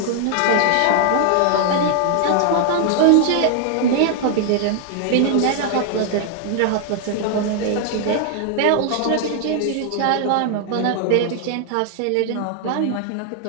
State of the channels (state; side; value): different; both; correlation 0.00